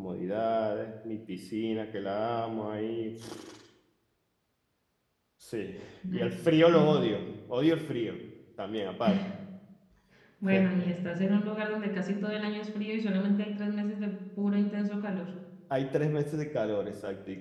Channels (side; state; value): both; identical; correlation 1.00